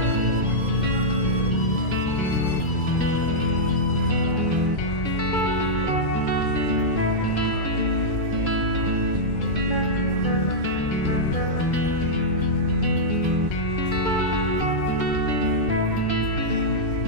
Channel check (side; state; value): right; late; 2.3 ms